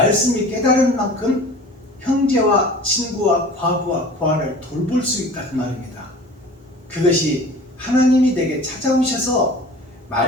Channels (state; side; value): normal; both; correlation 0.42